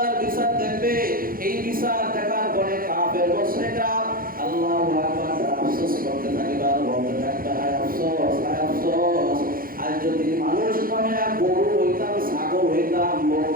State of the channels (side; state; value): left; late; 0.42 ms